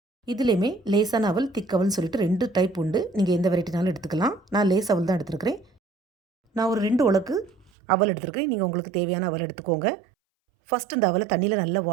இதுலேயுமே லேசான அவல், திக் அவல்னு சொல்லிட்டு 2 டைப் உண்டு. நீங்கள் எந்த வெரைட்டினாலும் எடுத்துக்கலாம். நான் லேஸ் அவல் தான் எடுத்துருக்கிறேன். நான் ஒரு 2 உலக்கு அவல் எடுத்துருக்கேன். நீங்கள் உங்களுக்கு தேவையான அவல் எடுத்துக்கோங்க. ஃபஸ்ட்டு இந்த அவலை தண்ணியில் நல்லா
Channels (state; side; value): drops out; left; at 7.7 s